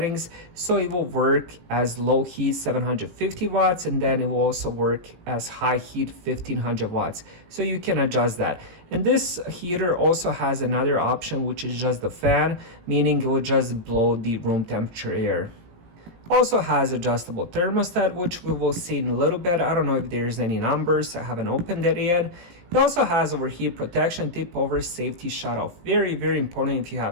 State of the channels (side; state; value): left; late; 18 ms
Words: so it will work as low heat 750 watts and then it will also work as high heat 1500 watts. So you can adjust that. And this heater also has another option, which is just the fan, meaning it will just blow the room temperature air. Also has adjustable thermostat, which we will see in a little bit. I don't know if there's any numbers, I haven't opened it yet. It also has overheat protection, tip over safety shut off. Very, very important if you